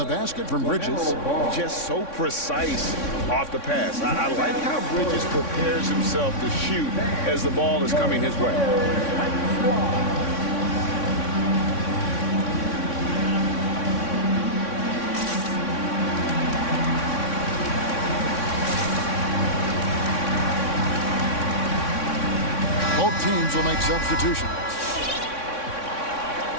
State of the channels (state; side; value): late; right; 3.6 ms